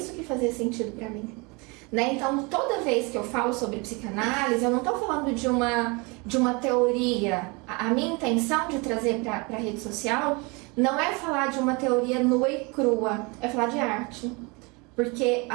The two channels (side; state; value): left; quieter; 28.3 dB